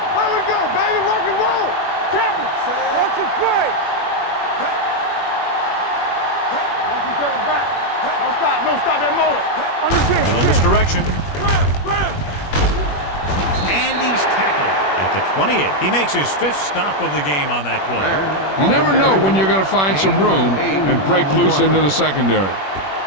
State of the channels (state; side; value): late; right; 21 ms